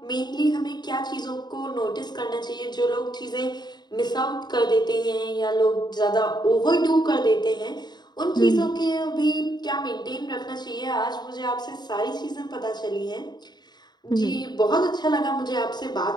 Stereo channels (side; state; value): right; late; 0.20 ms